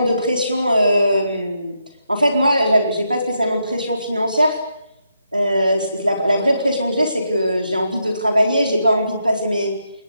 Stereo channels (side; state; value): both; inverted; correlation -0.81